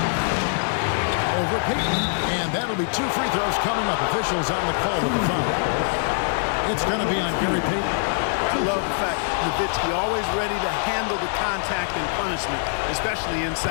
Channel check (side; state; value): right; silent; 63 dB below the other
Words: Over Payton, and that'll be two free throws coming up. Officials on the call with the foul. It's going to be on Gary Payton. I love the fact Nowitzki always ready to handle the contact and punishment, especially